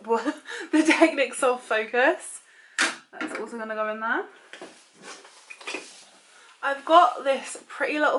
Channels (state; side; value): identical; both; correlation 1.00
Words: The Technic Soft Focus. That's also going to go in there. I've got this Pretty